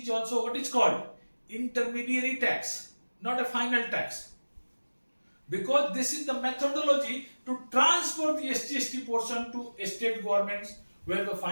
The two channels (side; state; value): both; inverted; correlation -1.00